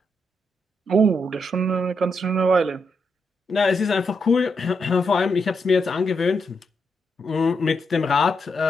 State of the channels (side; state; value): both; normal; correlation 0.81